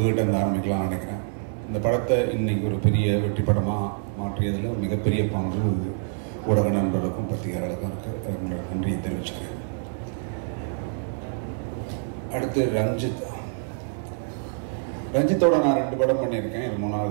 இருந்து ஆரம்பிக்கலாம்னு நினைக்கிறேன். இந்த படத்தை இன்னைக்கு ஒரு பெரிய வெற்றி படமாக மாற்றியதில் மிகப்பெரிய பங்கு ஊடக நண்பர்களுக்கும் பத்திரிகையாளர்களுக்கும் இருக்குது. உங்களோட நன்றியை தெரிவிச்சுக்கிறேன். அடுத்து ரஞ்சித்தோட நான் 2 படம் பண்ணியிருக்கேன். இது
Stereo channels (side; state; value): left; silent; digital silence